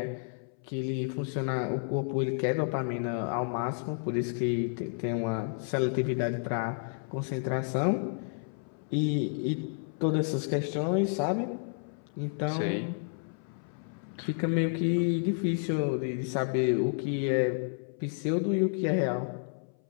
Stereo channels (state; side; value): silent; right; 57 dB below the other